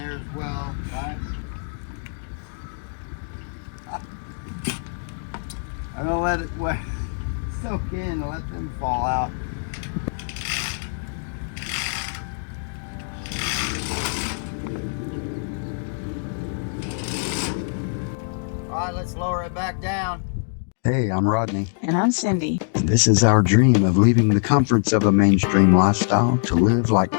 as well, right? I'm gonna let it soak in and let them fall out. All right, let's lower it back down. Hey, I'm Rodney. And I'm Cyndi. And this is our dream of leaving the comforts of a mainstream lifestyle to live like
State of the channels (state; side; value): silent; right; digital silence